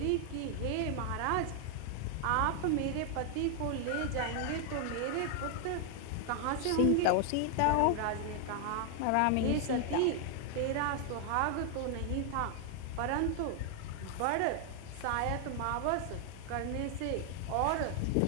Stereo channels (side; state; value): both; different; correlation 0.00